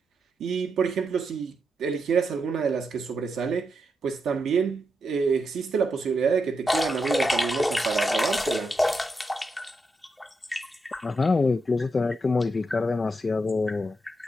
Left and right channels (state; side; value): normal; both; correlation 0.84